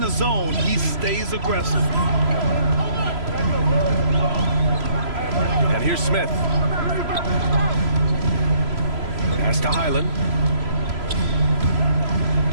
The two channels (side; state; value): left; late; 3.0 ms